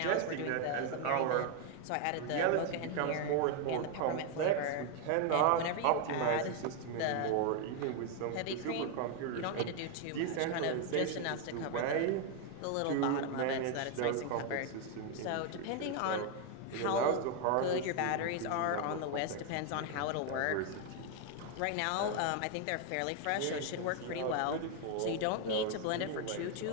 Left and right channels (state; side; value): different; both; correlation 0.01